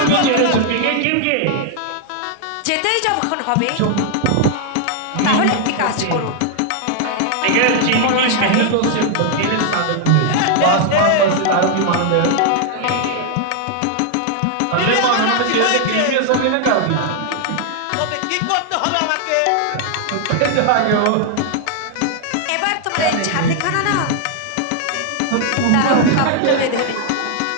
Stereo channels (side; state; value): both; different; correlation 0.00